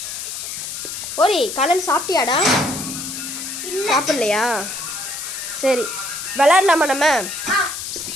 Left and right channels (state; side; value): noise; left; hiss, 6 dB below the sound